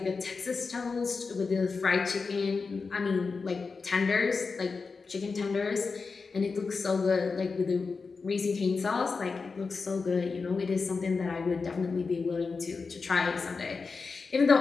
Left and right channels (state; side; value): quieter; right; 4.6 dB